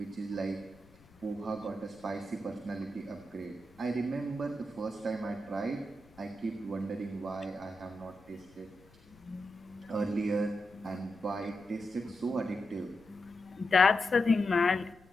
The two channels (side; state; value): left; noise; rumble, 27 dB below the sound